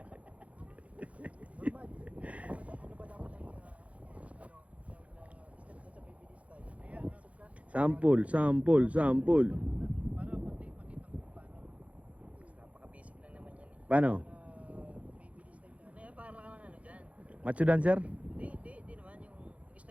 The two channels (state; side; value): late; left; 0.065 ms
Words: Sample. Napaka-basic lang naman yan eh. Paano? Ano yan, parang ano dyan? Macho dancer? Di naman. Yung